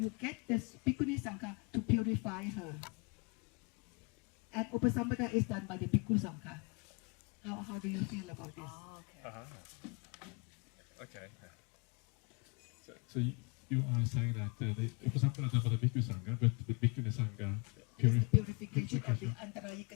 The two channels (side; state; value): right; quieter; 32.0 dB